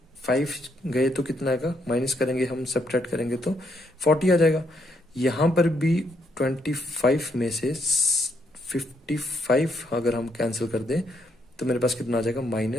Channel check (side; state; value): both; normal; correlation 0.75